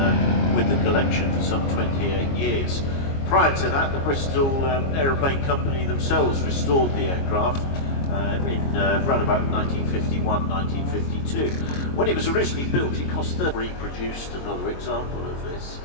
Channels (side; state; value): right; late; 22 ms